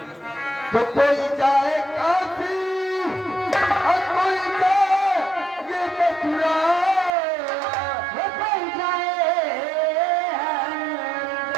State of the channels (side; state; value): left; drops out; at 7.1 s